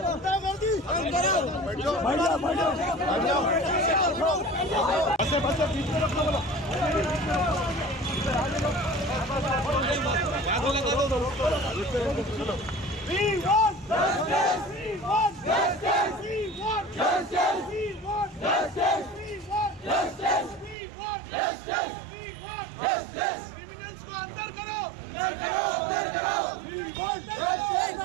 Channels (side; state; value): left; drops out; at 20.8 s